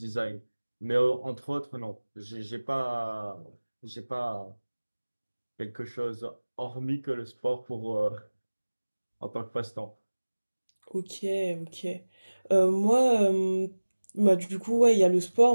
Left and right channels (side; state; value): both; inverted; correlation -1.00